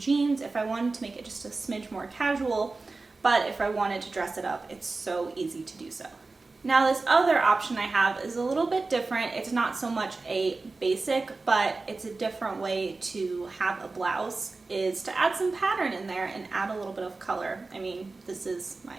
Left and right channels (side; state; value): left; quieter; 3.7 dB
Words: if I wanted to make it just a smidge more casual, but if I wanted to dress it up, it's so easy to do so. Now this other option I have is a little bit different. It's not so much a basic, but it's a different way to have a blouse, is to add some pattern in there and add a little bit of color. I mean, this is my